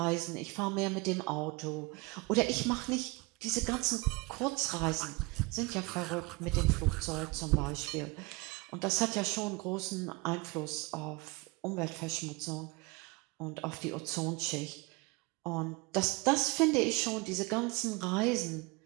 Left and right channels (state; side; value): quieter; left; 25.5 dB